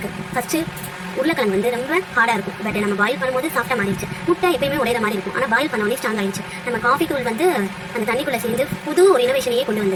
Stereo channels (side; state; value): both; identical; correlation 1.00